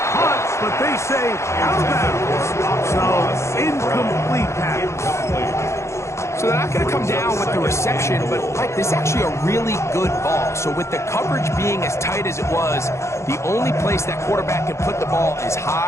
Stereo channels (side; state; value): right; late; 0.14 ms